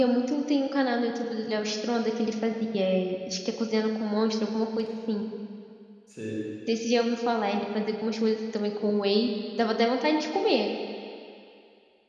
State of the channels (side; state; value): both; identical; correlation 1.00